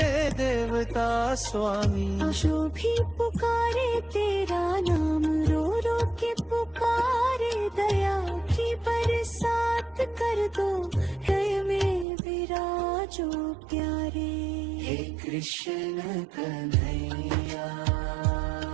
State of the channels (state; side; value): drops out; left; at 12.1 s